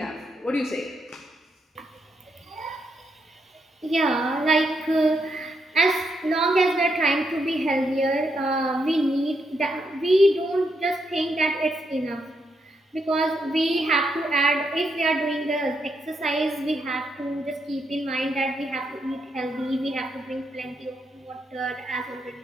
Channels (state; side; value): normal; both; correlation 0.80